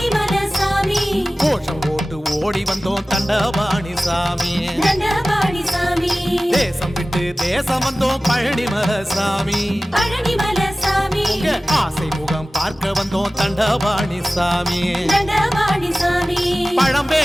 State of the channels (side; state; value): both; normal; correlation 0.97